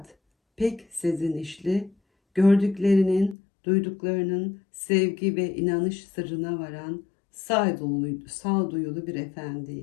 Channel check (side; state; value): right; drops out; at 3.4 s